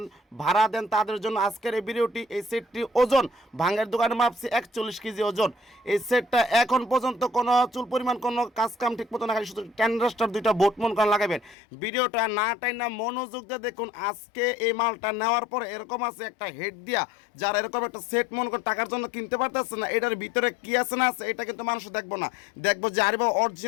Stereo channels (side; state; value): right; drops out; at 11.6 s